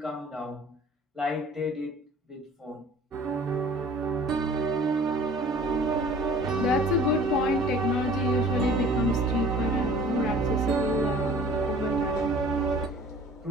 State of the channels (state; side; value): normal; both; correlation 0.49